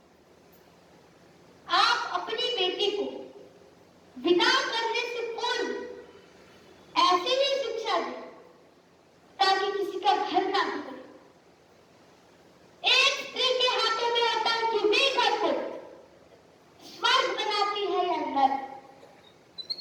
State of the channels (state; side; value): identical; both; correlation 1.00